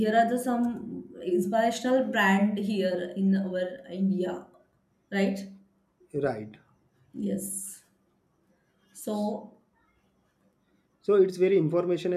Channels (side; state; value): both; identical; correlation 1.00